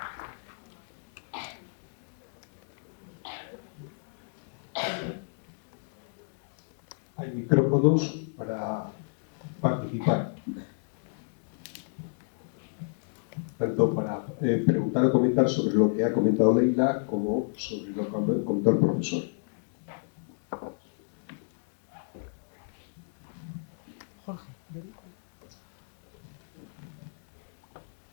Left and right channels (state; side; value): silent; right; digital silence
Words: Hay micrófonos para participar. Tanto para preguntar o comentar sobre lo que ha comentado Leila como sobre lo que comentó el profesor. Jorge.